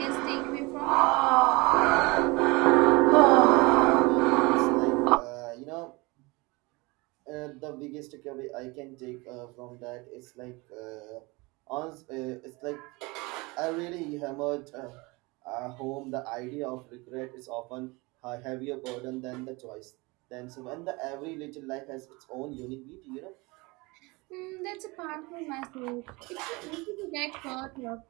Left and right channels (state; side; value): quieter; left; 25.1 dB